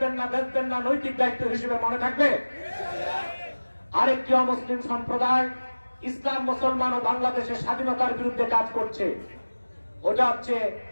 না, বেচবেন না, নৈতিক দায়িত্ব হিসেবে মনে থাকবে। আরেকটি অমুসলিম সম্প্রদায় ইসলাম, মুসলমান ও বাংলাদেশের স্বাধীনতার বিরুদ্ধে কাজ করছে, ওটা হচ্ছে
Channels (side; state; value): both; inverted; correlation -1.00